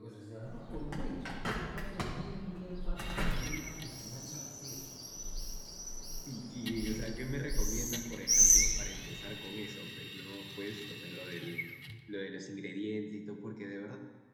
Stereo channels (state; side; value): identical; both; correlation 1.00